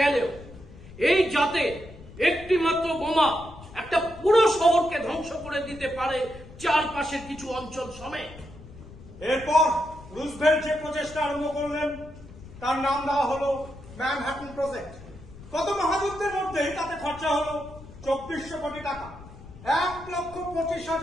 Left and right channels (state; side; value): noise; left; rumble, 17 dB below the sound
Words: এই জাতে একটি মাত্র বোমা একটা পুরো শহরকে ধ্বংস করে দিতে পারে চারপাশের কিছু অঞ্চল সমেত। এরপর রুজভেল্ট যে প্রচেষ্টা আরম্ভ করলেন তার নাম দেওয়া হলো ম্যানহাটন প্রজেক্ট। গত মহাযুদ্ধের মধ্যেই তাতে খরচা হলো 2400 কোটি টাকা।